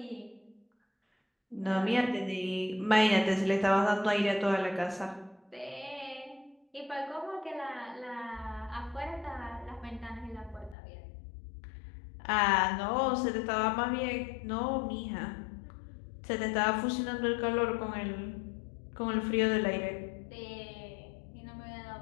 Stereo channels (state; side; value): drops out; right; at 10.8 s